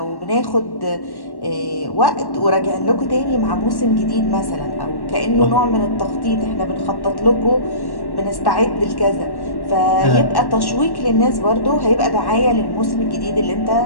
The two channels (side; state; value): right; late; 1.1 ms